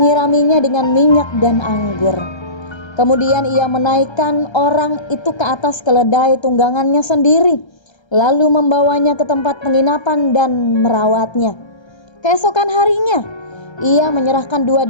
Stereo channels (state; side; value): late; right; 1.3 ms